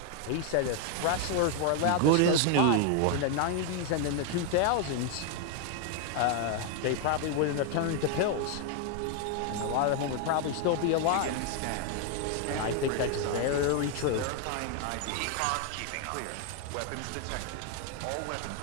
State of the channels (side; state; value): both; different; correlation 0.01